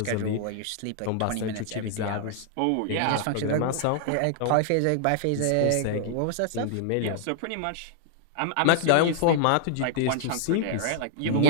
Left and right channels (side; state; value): both; different; correlation 0.00